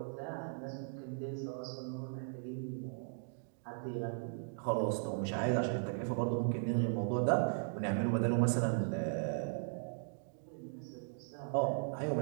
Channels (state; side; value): silent; left; digital silence